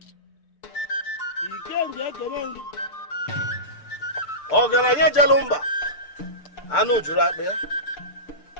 Ọgaranya Jalumba anụ juru akpa ya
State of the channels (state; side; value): late; right; 6.7 ms